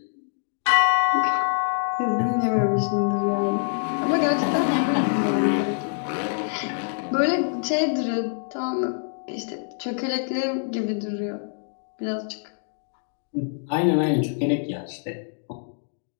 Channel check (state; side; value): silent; right; digital silence